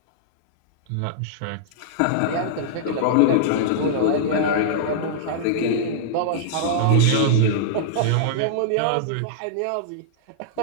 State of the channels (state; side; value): different; both; correlation -0.02